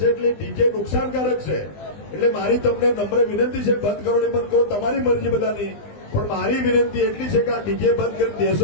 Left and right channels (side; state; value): right; late; 20 ms